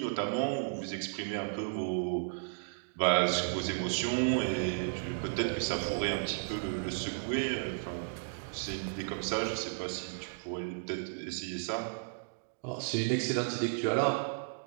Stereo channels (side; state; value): left; silent; digital silence